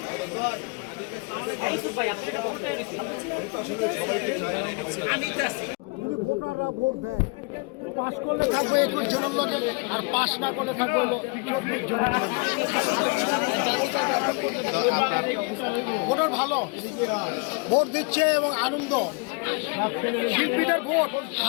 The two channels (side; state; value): right; quieter; 31.5 dB